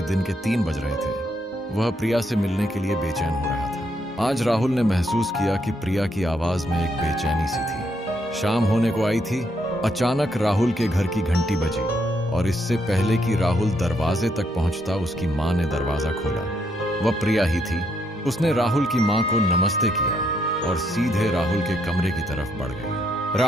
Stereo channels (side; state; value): both; normal; correlation 0.75